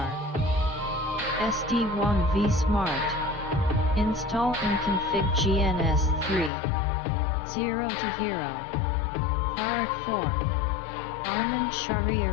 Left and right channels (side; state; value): right; drops out; at 6.5 s